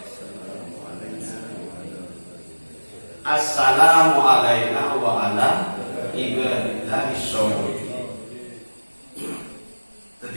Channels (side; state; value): both; inverted; correlation -1.00